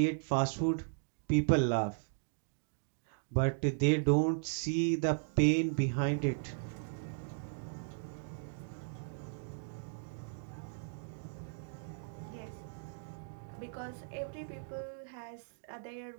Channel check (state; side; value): silent; left; digital silence